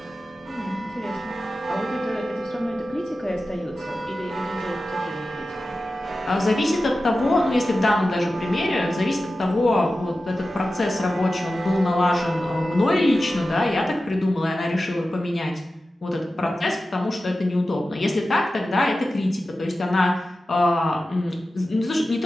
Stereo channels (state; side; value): normal; both; correlation 0.94